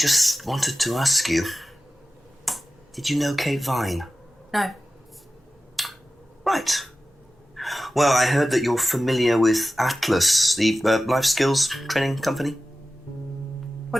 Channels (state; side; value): normal; both; correlation 0.95